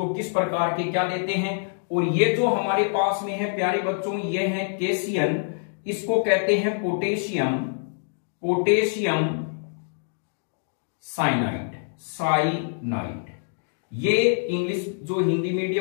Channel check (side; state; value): right; silent; digital silence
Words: किस प्रकार के क्या देते हैं। और ये जो हमारे पास में है प्यारे बच्चों ये है केसीएन, इसको कहते हैं पोटेशियम साइनाइड। ये इंग्लिश जो हिंदी